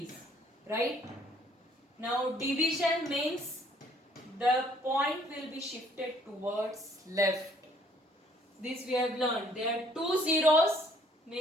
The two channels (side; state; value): both; normal; correlation 0.61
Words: Right? Now division means the point will be shifted towards left. This we have learned. There are 2 zeros,